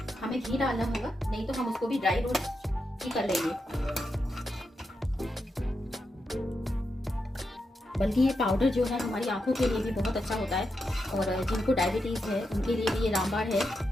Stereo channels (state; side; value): normal; both; correlation 0.86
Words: हमें घी डालना होगा, नहीं तो हम उसको भी ड्राई रोस्ट ही कर लेंगे। बल्कि ये पाउडर जो है हमारी आंखों के लिए भी बहुत अच्छा होता है, और जिनको डायबिटीज़ है उनके लिए भी ये रामबाण है,